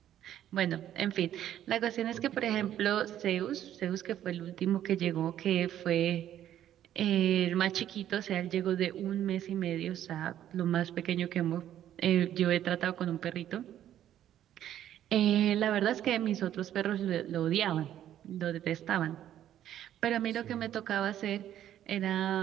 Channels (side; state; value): left; quieter; 11.4 dB